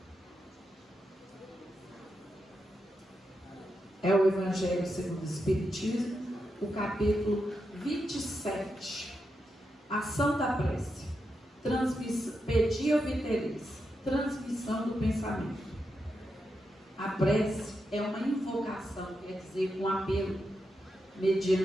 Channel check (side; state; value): both; normal; correlation 0.86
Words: É o Evangelho segundo o Espiritismo, o capítulo 27. Ação da prece. Pedia viteris. transmissão do pensamento. A prece é uma invocação, quer dizer, um apelo,